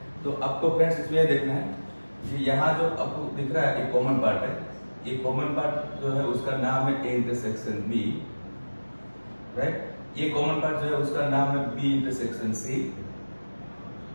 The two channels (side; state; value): both; inverted; correlation -1.00